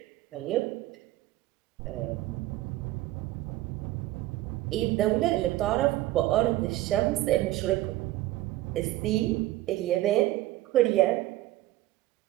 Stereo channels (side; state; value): left; quieter; 16.1 dB